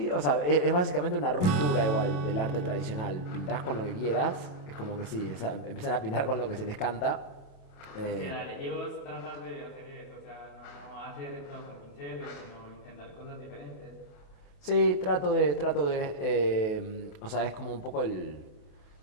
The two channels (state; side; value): late; right; 28 ms